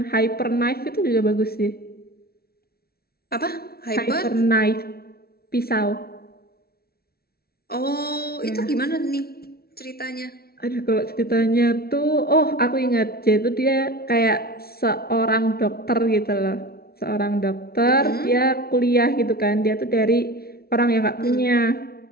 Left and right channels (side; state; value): right; late; 0.44 ms